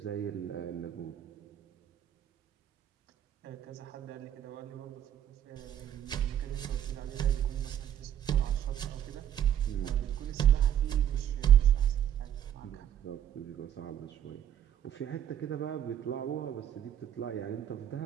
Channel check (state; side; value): quieter; left; 10.2 dB